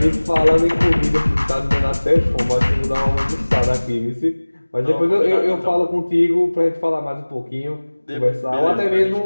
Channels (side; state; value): both; inverted; correlation -1.00